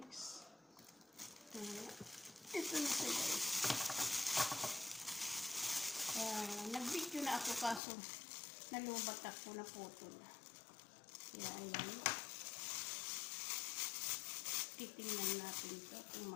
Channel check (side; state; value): right; drops out; at 7.8 s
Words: Ito na siya guys. Nag-video na ako kaso nalubat ako na putol. Kaya ayan. Titingnan natin ito kung